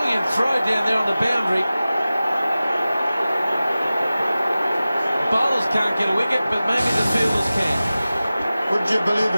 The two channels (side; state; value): both; inverted; correlation -0.96